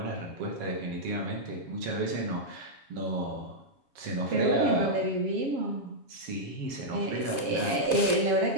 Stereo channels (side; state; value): left; late; 7.2 ms